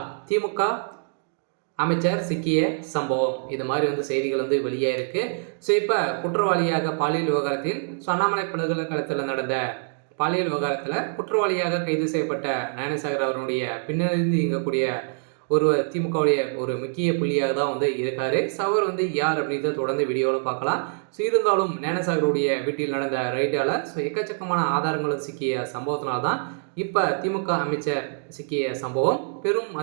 திமுக அமைச்சர் சிக்கிய சம்பவம். இது மாதிரி செய்திகள் வெளியாயிருக்கு. ஸோ இப்போ குற்றவாளியாக பாலியல் விவகாரத்தில் அண்ணாமலை பல்கலைக்கழகத்தில் நடந்த பாலியல் விவகாரத்தில் குற்றவாளியாக கைது செய்யப்பட்ட ஞானசேகர் அவருடைய பின்னணியிலிருந்து இயங்கக்கூடிய ஒருவர் திமுகவுடைய ஒரு முக்கிய புள்ளியாக தான் இருக்காரு. அவர் யார் அப்படின்றத தொடர்ந்து வீடியோவில் பார்க்கலாம். ஸோ இருந்தாலும் ஞானசாகருடைய வீட்டில் நடந்த ரைடால் எக்கச்சக்கமான ஆதாரங்களும் சிக்கிய சம்பவத்தினால தான் இப்போ திமுக அமைச்சர் சிக்கிய சம்பவம் பெரும்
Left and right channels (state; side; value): silent; left; digital silence